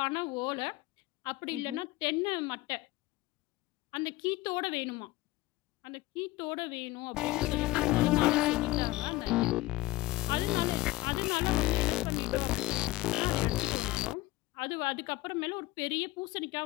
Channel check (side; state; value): right; quieter; 18.8 dB